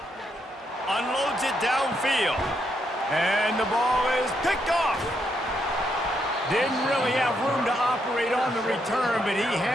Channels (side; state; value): both; normal; correlation 0.78